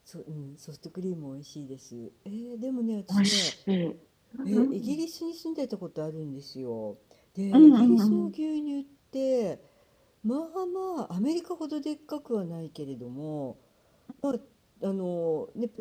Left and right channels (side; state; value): both; identical; correlation 1.00